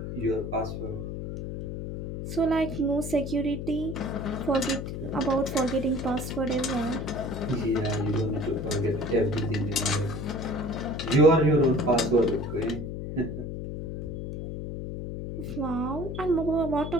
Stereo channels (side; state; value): left; noise; hum, 6 dB below the sound